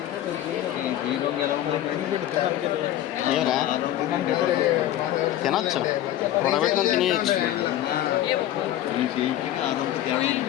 ఏమరా తినొచ్చు, ఉడబెట్టుకొని తినేయచ్చు.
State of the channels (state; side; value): quieter; right; 12.7 dB